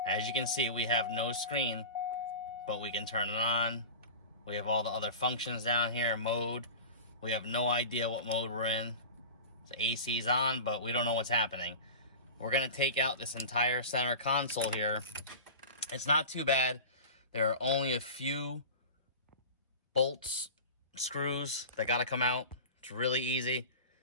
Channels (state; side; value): inverted; both; correlation -0.33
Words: As you can see, we have no screen, but we can turn it on. We have all the other functions down here, mode. We have no idea what mode we're in. The AC's on, but we don't know what's happening. We're gonna take out this entire center console here. It's not too bad. There are only a few bolts, screws that gotta come out. It's really easy.